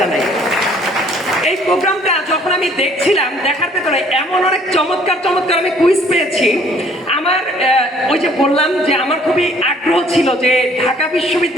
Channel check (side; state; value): both; normal; correlation 0.59